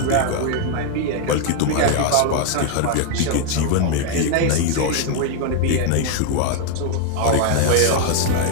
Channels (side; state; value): both; different; correlation 0.00